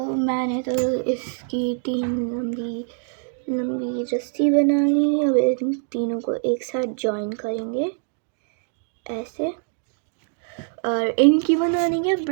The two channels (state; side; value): silent; left; 56 dB below the other